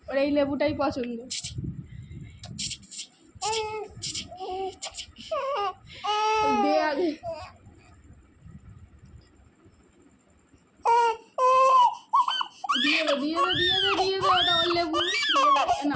ওর এই লেবুটাই পছন্দ। দে আগে। দিয়ে দে দিয়ে দে দিয়ে দে দিয়ে দে, ওটা ওর লেবু। না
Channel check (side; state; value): both; identical; correlation 1.00